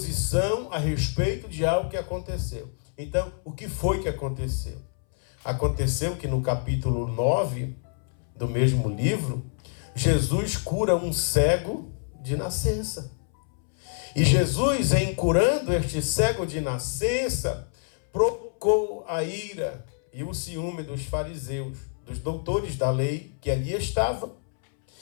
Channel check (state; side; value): silent; right; 60 dB below the other